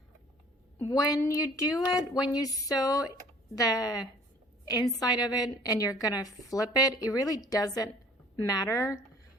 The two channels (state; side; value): normal; both; correlation 0.53